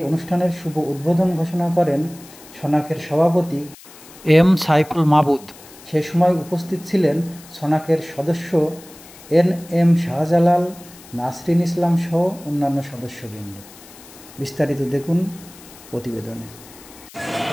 অনুষ্ঠানের শুভ উদ্বোধন ঘোষণা করেন সোনাকের সভাপতি এম সাইফুল মাবুদ। সে সময় উপস্থিত ছিলেন সোনাকের সদস্য এম শাহজালাল, নাসরিন ইসলাম সহ অন্যান্য সদস্যবৃন্দ। বিস্তারিত দেখুন প্রতিবেদনে।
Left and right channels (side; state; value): left; noise; hiss, 21 dB below the sound